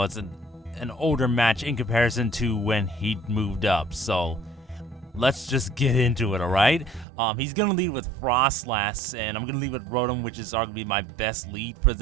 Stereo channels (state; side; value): drops out; left; at 7.1 s